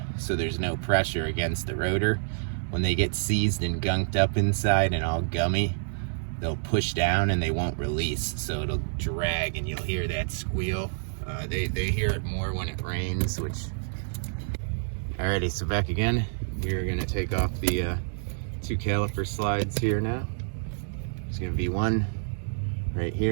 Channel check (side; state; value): left; silent; digital silence